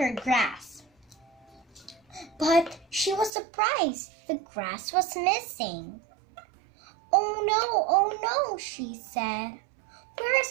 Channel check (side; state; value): left; drops out; at 3.3 s